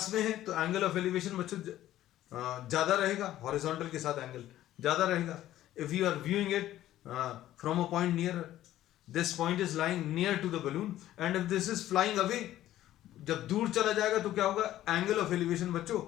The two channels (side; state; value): right; quieter; 13.6 dB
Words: में है तो एंगल ऑफ एलिवेशन बच्चों ज्यादा रहेगा, हॉरिजॉन्टल के साथ एंगल ज्यादा रहेगा. If you are viewing it from a point near, this point is lying near to the balloon, and if this is flying away, जब दूर चला जाएगा तो क्या होगा? एंगल ऑफ एलिवेशन बच्चों